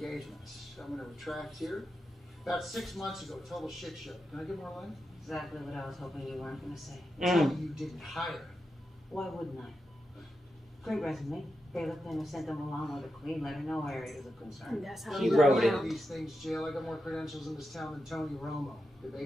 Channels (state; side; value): normal; both; correlation 0.88